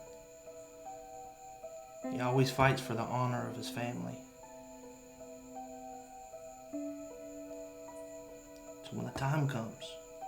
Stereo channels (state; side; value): identical; both; correlation 1.00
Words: He always fights for the honor of his family. So when the time comes